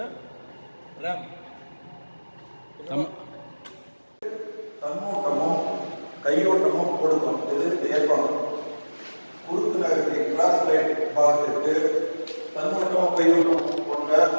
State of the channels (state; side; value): inverted; both; correlation -1.00